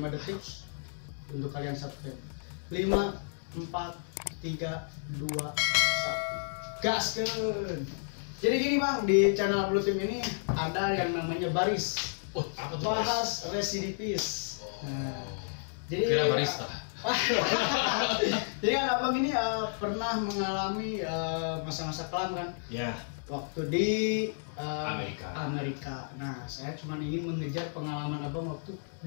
detik untuk kalian subscribe. 5, 4, 3, 2, 1. Gaskeun. Jadi gini Bang, di channel Blue Team ini ada yang namanya baris. Apa tuh bahas residivis. Nah, jadi kira barista. Jadi kan Abang ini pernah mengalami masa-masa kelam kan? Ya. Waktu di Amerika. Nah, saya cuma ingin mengejar pengalaman Abang waktu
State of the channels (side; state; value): right; silent; digital silence